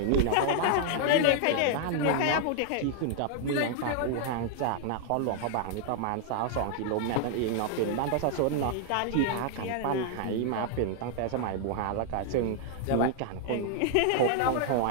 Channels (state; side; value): different; both; correlation 0.00